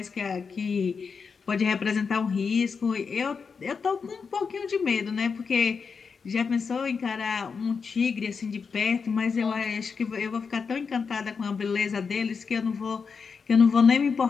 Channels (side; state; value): right; quieter; 5.5 dB